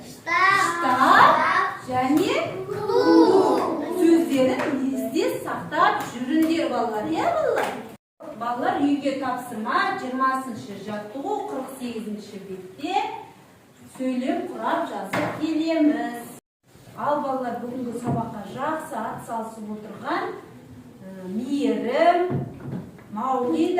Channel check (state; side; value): identical; both; correlation 1.00